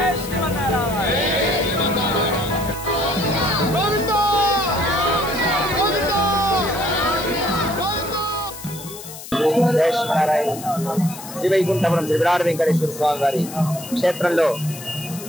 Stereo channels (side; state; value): left; noise; hiss, 13 dB below the sound